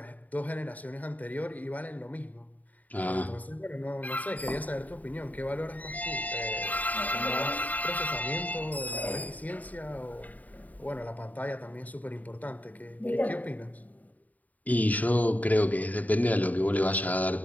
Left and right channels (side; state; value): right; late; 0.076 ms